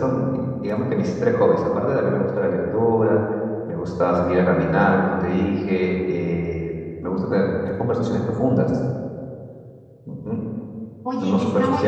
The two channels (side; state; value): both; identical; correlation 1.00